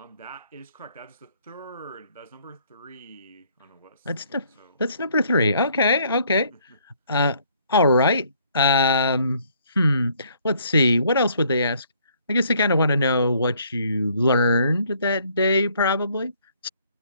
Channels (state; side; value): inverted; both; correlation -0.64